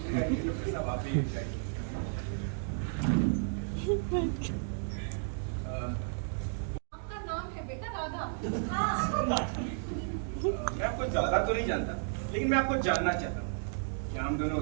आपका नाम है बेटा राधा। हाँ। मैं आपको ज्यादा तो नहीं जानता, लेकिन मैं आपको जानना चाहता हूँ, क्या हम दोनों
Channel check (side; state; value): left; silent; digital silence